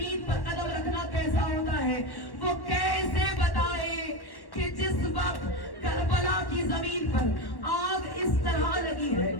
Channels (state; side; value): late; right; 1.1 ms